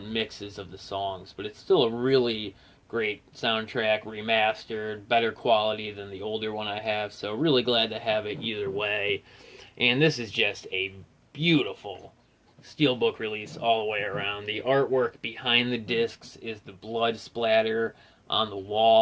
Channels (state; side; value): identical; both; correlation 1.00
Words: mixes of the songs, but it's still a really great soundtrack, remastered, better quality than the older one I have, so really glad to have it either way. And this is just a beautiful Steelbook release all the way around. The artwork behind the discs is the blood splatter on the